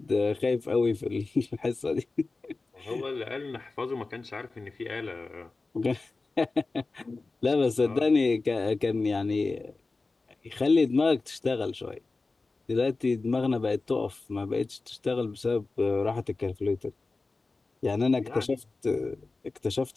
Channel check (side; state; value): right; quieter; 3.6 dB